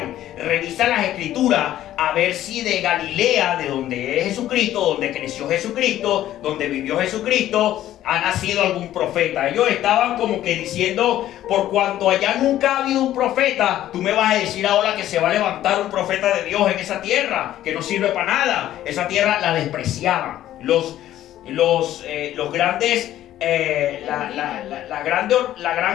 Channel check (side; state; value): right; quieter; 13.0 dB